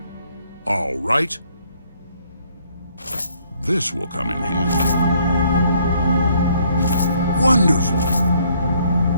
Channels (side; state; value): both; inverted; correlation -0.66